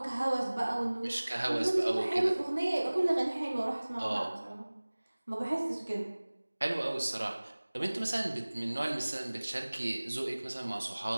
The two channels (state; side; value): inverted; both; correlation -1.00